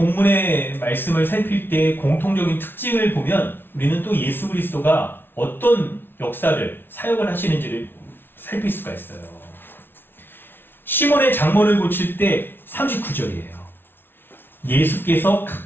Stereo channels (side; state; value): right; late; 0.10 ms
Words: 말씀을 살필 때 공통적인 특징을 보면 우리는 또 예수 그리스도가 어떤 역사를 사역을 하시는지를 살필 수가 있어요. 시몬의 장모를 고칠 때 39절이에요. 예수께서